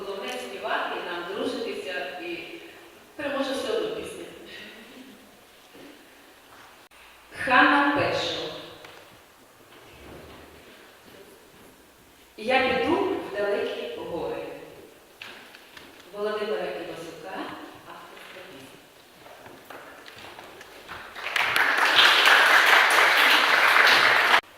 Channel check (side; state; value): both; identical; correlation 1.00